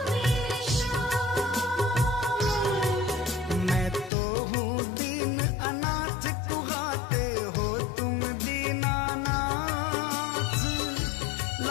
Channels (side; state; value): right; drops out; at 4.1 s